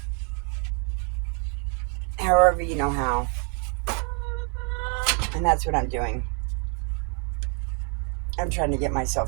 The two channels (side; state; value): left; quieter; 39.9 dB